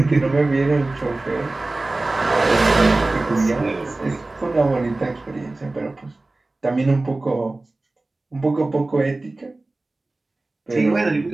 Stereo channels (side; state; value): left; quieter; 3.0 dB